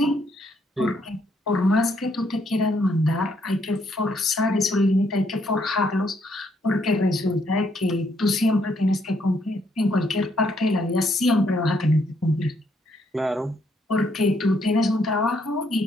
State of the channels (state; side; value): normal; both; correlation 0.72